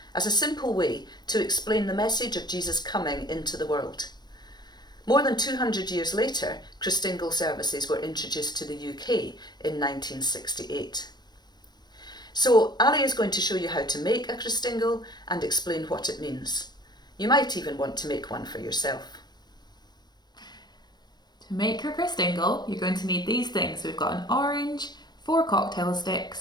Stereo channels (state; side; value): late; right; 0.20 ms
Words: as a simple way to explain the message of Jesus coming into the world. More than 200 years later, Christingle services were introduced to the UK in 1968. So Ali is going to show you how to make a Christingle and explain what it means. You might even want to make one for yourself. To make your Christingle, you're going to need these things. We've got an orange, 4 cocktail